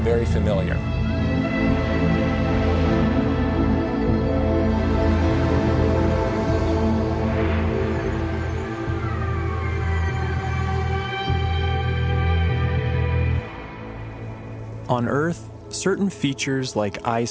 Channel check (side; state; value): both; identical; correlation 1.00